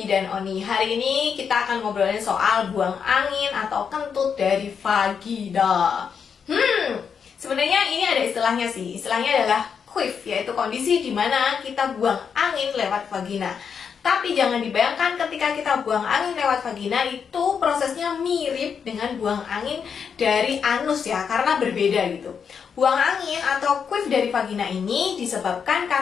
Oni. Hari ini kita akan ngobrolin soal buang angin atau kentut dari vagina. Sebenarnya ini ada istilahnya sih. Istilahnya adalah queef, yaitu kondisi di mana kita buang angin lewat vagina. Tapi jangan dibayangkan ketika kita buang angin lewat vagina itu prosesnya mirip dengan buang angin dari anus ya, karena berbeda gitu. Buang angin atau queef dari vagina ini disebabkan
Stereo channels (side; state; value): right; quieter; 6.7 dB